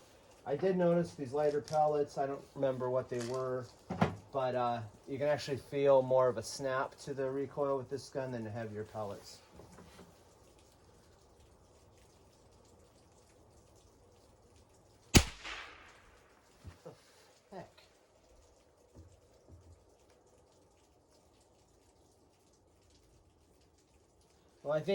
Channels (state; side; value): identical; both; correlation 1.00